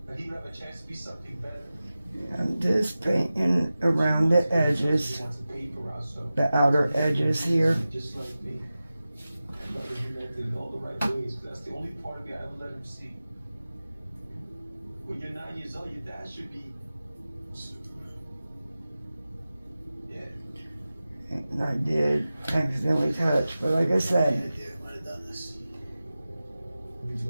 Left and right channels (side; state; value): both; inverted; correlation -0.95